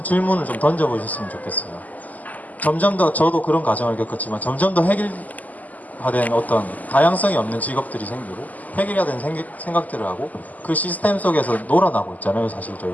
질문을 좀 던져보셨으면 좋겠어요. 점점 더, 저도 그런 과정을 겪었지만 점점 더 획일화된 어떤 다양성이 없는 직업들이 생기고 획일화된 생각들을 하고 그 시스템 속에서 놀아나고 있잖아요, 사실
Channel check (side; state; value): right; late; 0.079 ms